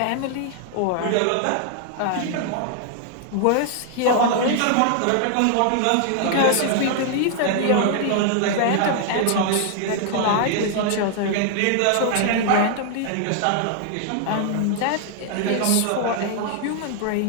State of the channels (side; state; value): both; different; correlation 0.00